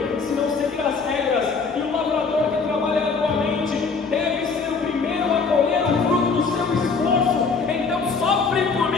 se não seguir as regras, e o lavrador que trabalha arduamente deve ser o primeiro a colher o fruto do seu esforço. Então sofre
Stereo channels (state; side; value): quieter; right; 4.8 dB